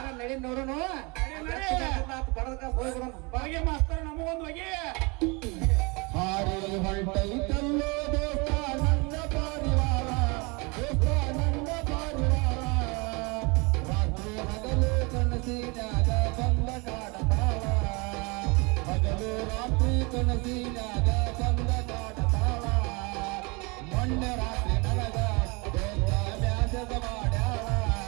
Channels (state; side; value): quieter; left; 28.6 dB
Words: ನಡಿ ನೋಡೋಣ ಬಡದ ಹೋಗ್ಬಿಡೋಣ ಬಾಗೆ ಮಾಸ್ತರ್ ನಮಗೊಂದು ಹೋಗಿ ಹಾರಿ ಹೊರಟೈತಲ್ಲೋ ದೋಸ್ತ ನನ್ನ ಪಾರಿವಾಳ ದೋಸ್ತ ನನ್ನ ಪಾರಿವಾಳ ರಾತ್ರಿ ಹಗಲು ಕನಸಿನಾಗ ಬಂದ ಕಾಡತಾಳ ಹಗಲು ರಾತ್ರಿ ಕನಸಿನಾಗ ಬಂದ ಕಾಡತಾಳ ಮೊನ್ನೆ